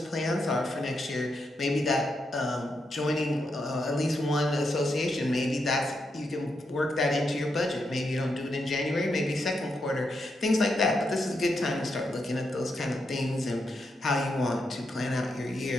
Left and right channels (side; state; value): both; normal; correlation 0.83